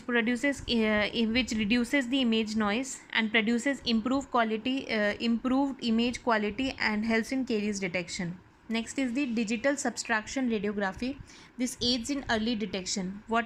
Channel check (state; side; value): identical; both; correlation 1.00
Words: the image noise and produces improved image quality and helps in caries detection. Next is the digital subtraction radiography. This aids in early detection.